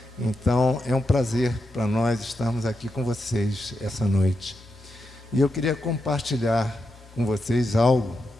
Então, é um prazer para nós estarmos aqui com vocês essa noite. E eu queria compartilhar com vocês algo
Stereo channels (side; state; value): both; normal; correlation 0.86